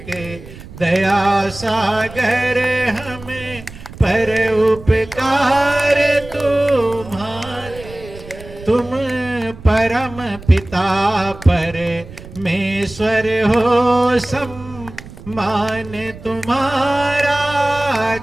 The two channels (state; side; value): noise; right; rumble, 16 dB below the sound